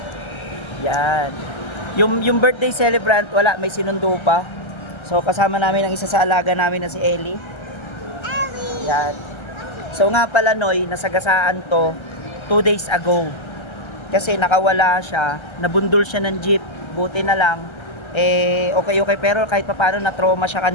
Yan. Yung birthday celebrant, wala, may sinundo pa. So kasama namin ang isa sa alaga namin na si Ellie. Yan. So nga pala Noy, nasagasaan to 2 days ago. Kasi nakawala siya, nabundol siya ng jeep. Buti na lang, okay pero kahit papaano na-trauma siya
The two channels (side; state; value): right; late; 1.3 ms